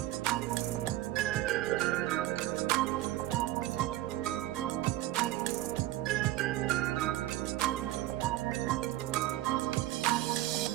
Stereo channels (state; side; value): quieter; left; 15.4 dB